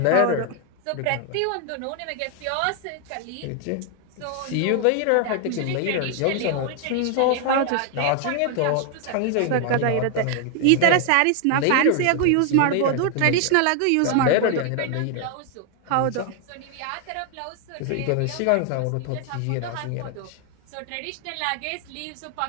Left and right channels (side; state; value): both; different; correlation 0.00